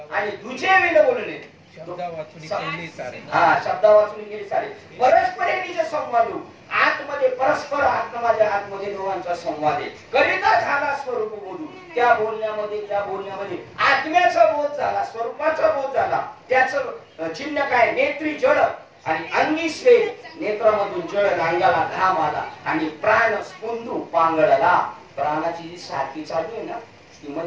आणि तुझे विन बोलणे. शब्दा वाचून केली सारे. हा, शब्दा वाचून केली सारे. परस्परे निज संवादू, आतमध्ये परस्पर आतमध्ये दोघांचा संवाद आहे. करिता झाला स्वरूप बोलू, त्या बोलण्यामध्ये आत्म्याचा बोध झाला, स्वरूपाचा बोध झाला. त्याचं चिन्ह काय, नेत्री जळ आणि अंगी स्वेद, नेत्रामधून जळ, अंगाला घाम आला आणि प्राण स्पुंदू पांगळला. प्राणाची जी सारखी चालू आहे ना, ती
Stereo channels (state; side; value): identical; both; correlation 1.00